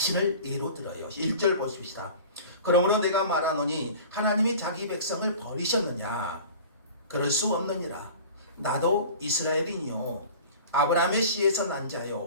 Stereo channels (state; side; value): inverted; both; correlation -0.41